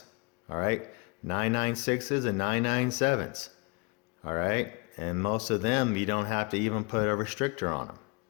All right, 996s and 997s. All right, and most of them you don't have to even put a restrictor on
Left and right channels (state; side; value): quieter; right; 28.8 dB